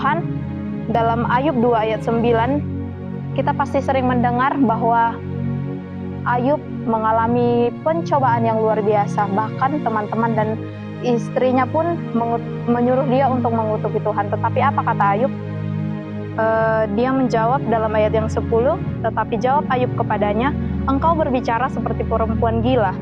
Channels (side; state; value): both; identical; correlation 1.00